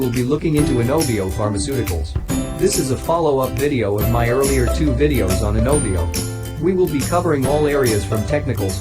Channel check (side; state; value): both; identical; correlation 1.00